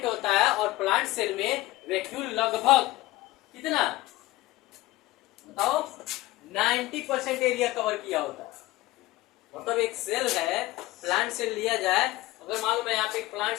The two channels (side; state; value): right; quieter; 18.3 dB